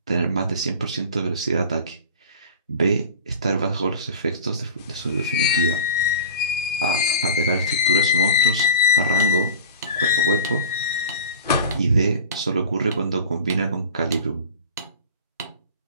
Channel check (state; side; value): inverted; both; correlation -0.36